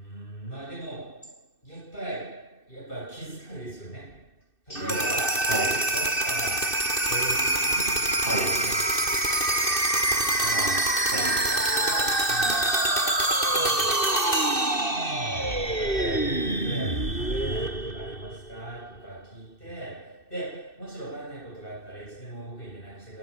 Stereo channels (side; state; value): right; late; 2.6 ms